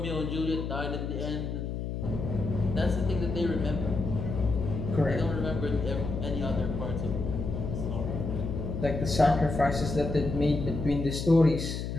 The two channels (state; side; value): noise; left; hum, 4 dB below the sound